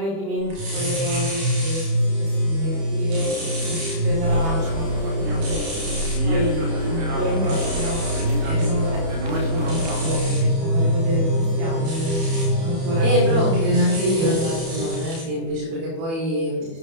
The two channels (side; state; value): left; late; 30 ms